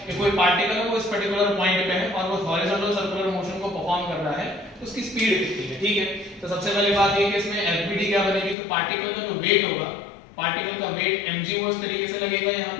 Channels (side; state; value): right; drops out; at 8.6 s